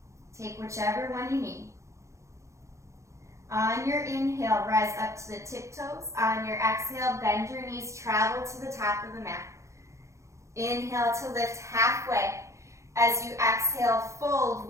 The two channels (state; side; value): late; left; 0.14 ms